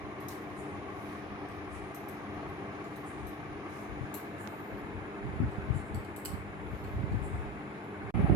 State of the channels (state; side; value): normal; both; correlation 0.22